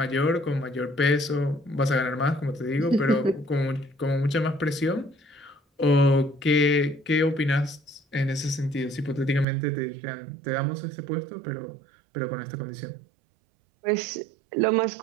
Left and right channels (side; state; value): left; drops out; at 9.5 s